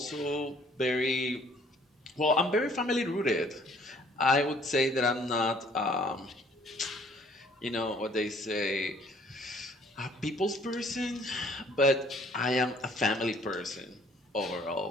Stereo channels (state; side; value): normal; both; correlation 0.59